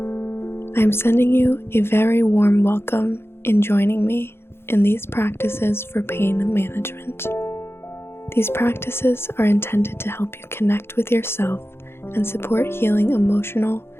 I am sending you a very warm welcome in joining me in these practices for pain management. These practices are intended to help you connect with yourself and support healing emotional,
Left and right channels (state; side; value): late; right; 0.12 ms